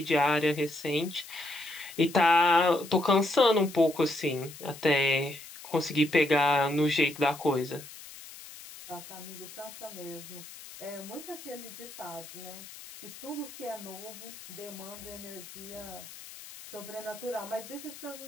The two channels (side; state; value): left; noise; hiss, 15 dB below the sound